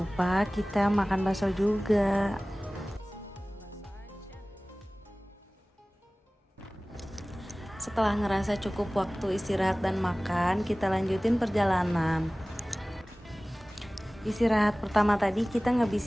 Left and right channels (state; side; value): normal; both; correlation 0.98